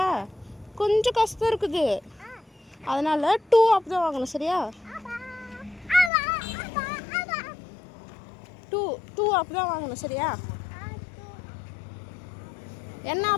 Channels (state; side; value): drops out; right; at 6.1 s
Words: கொஞ்சம் கஷ்டம் இருக்குது, அதனால் 2 ஆப் தான் வாங்கணும், சரியா? 2 ஆப் தான் வாங்கணும், சரியா? என்ன